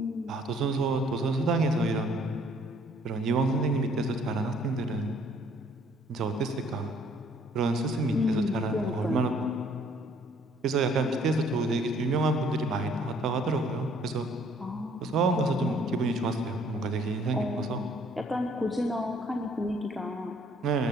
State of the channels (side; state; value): both; normal; correlation 0.61